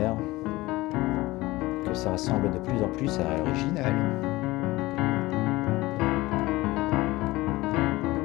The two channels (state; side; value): quieter; right; 19.6 dB